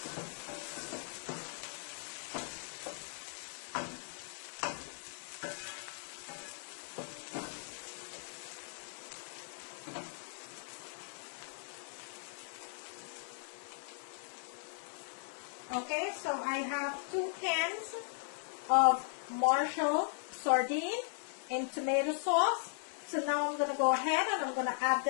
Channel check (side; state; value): right; silent; digital silence